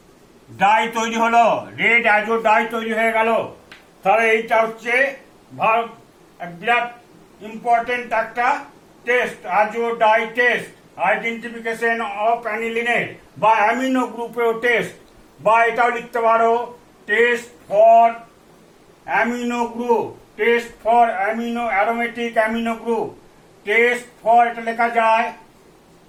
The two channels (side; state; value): both; identical; correlation 1.00